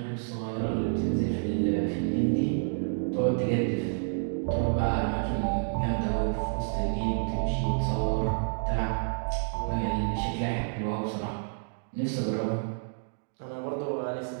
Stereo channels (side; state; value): left; silent; digital silence